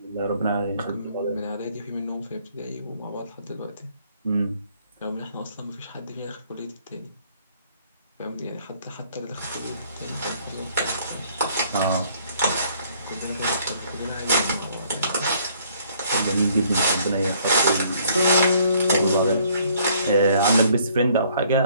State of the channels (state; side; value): inverted; both; correlation -0.62